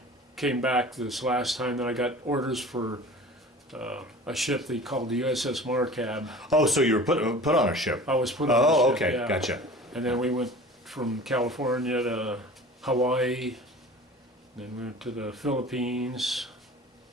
came back this last time, then I got orders for a ship they called the USS Markab. Oh, so you were put on a ship. I was put on a Oh, ship, okay, yeah. gotcha. And then we went from California to Hawaii, then we went to the Philippines,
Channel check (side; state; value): both; normal; correlation 0.41